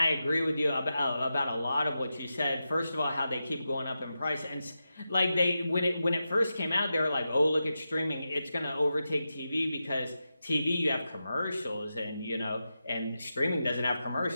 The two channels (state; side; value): inverted; both; correlation -0.90